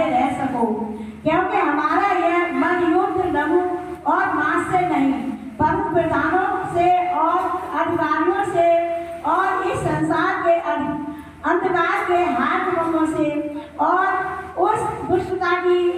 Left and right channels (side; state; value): both; identical; correlation 1.00